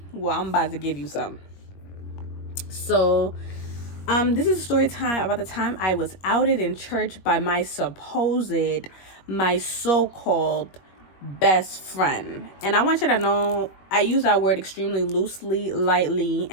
well, I'm about to give you some. So, this is a story time about the time I was outed in church by my so-called best friend. And I want you to know I use that word extremely loosely, lightly,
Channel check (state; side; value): late; right; 21 ms